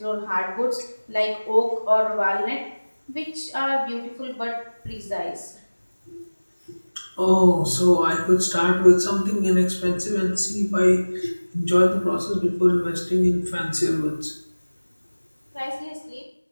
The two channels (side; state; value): both; inverted; correlation -1.00